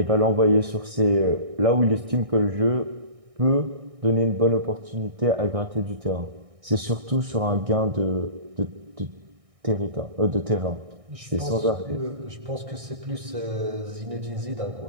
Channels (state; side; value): late; left; 1.6 ms